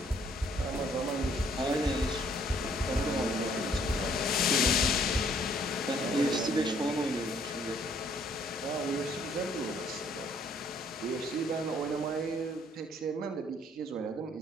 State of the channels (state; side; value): normal; both; correlation 0.63